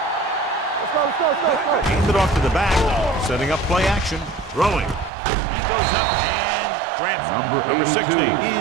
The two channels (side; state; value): left; drops out; at 5.1 s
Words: go. Hand it off to the back, setting up play action. Throwing. He goes up and grabs it. Number 60